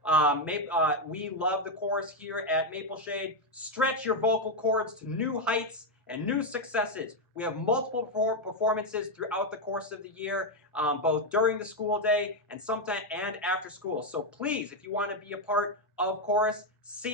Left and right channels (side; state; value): both; normal; correlation 0.04